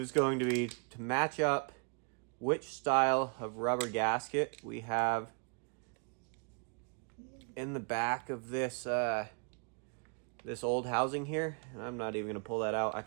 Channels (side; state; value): left; quieter; 39.4 dB